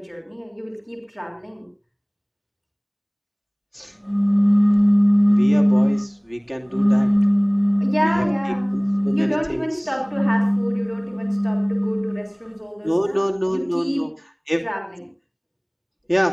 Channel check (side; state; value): both; identical; correlation 1.00